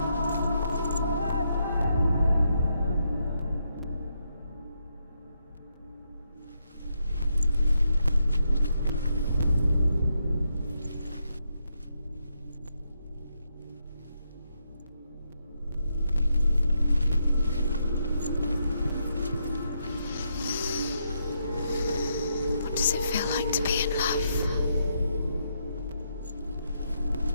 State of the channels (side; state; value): both; inverted; correlation -0.80